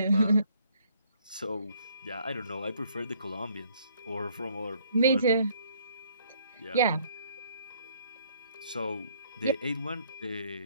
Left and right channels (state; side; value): inverted; both; correlation -0.64